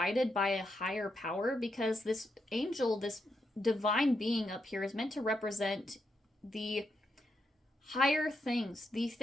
by a higher power, because this angel, this divine being up here, is meant to represent the higher things, the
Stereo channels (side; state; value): both; normal; correlation 0.82